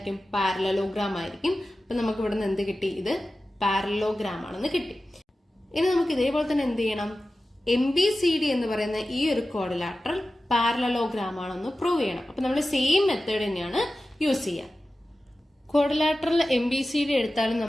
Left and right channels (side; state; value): both; normal; correlation 0.94